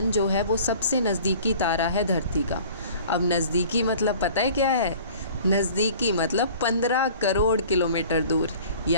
जो है वो सबसे नज़दीकी तारा है धरती का। अब नज़दीकी मतलब पता है क्या है? नज़दीकी मतलब 15 करोड़ किलोमीटर दूर,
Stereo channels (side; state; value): both; inverted; correlation -0.47